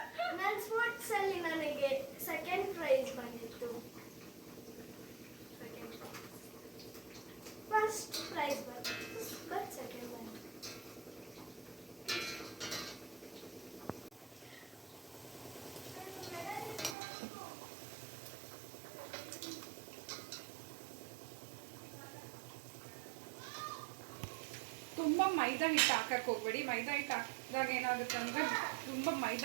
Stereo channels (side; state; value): left; drops out; at 16.9 s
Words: ನನ್ನ ಸ್ಪೋರ್ಟ್ಸ್ ಅಲ್ಲಿ ನನಗೆ ಸೆಕೆಂಡ್ ಪ್ರೈಸ್ ಬಂದಿತ್ತು. ಫಸ್ಟ್ ಪ್ರೈಸ್ ಬಂದಿತ್ತು, ಬಟ್ ಸೆಕೆಂಡ್ ಬಂದಿತ್ತು. ತುಂಬ ಮೈದಾ ಹಿಟ್ಟು ಹಾಕಕ್ಕೆ ಹೋಗ್ಬೇಡಿ. ಮೈದಾ ಹಿಟ್ಟು ಹಾಕಿದಾಗ ಏನಾಗುತ್ತೆ ಅಂದರೆ ತುಂಬ